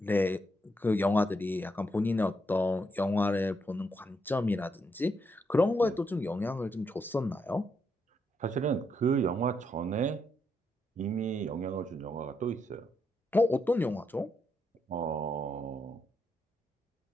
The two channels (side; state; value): both; normal; correlation 0.79